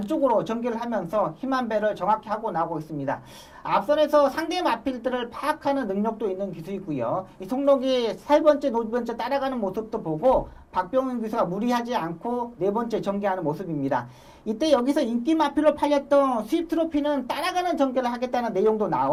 전개를 하면서 힘한 배를 정확히 하고 나오고 있습니다. 앞선에서 상대 마필들을 파악하는 능력도 있는 기수이고요. 이 송록이 3번째, 5번째 따라가는 모습도 보고 박병윤 기수가 무리하지 않고 4번째 전개하는 모습입니다. 이때 여기서 인기 마필로 팔렸던 수입 트로피는 따라가는 전개를 하겠다는 내용도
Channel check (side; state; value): both; identical; correlation 1.00